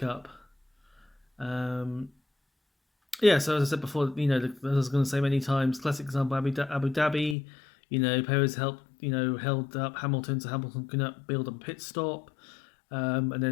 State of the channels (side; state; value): right; drops out; at 7.4 s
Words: So as I said before, as I was going to say many times, classic example, Abu Dhabi, Perez held up Hamilton so Hamilton couldn't build a pit stop. And